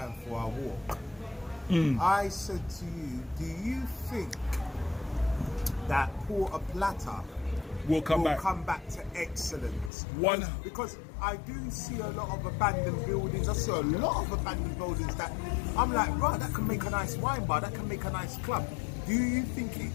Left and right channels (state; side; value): drops out; right; at 9.9 s